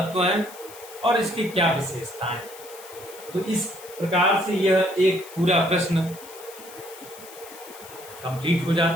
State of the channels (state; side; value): noise; left; hiss, 17 dB below the sound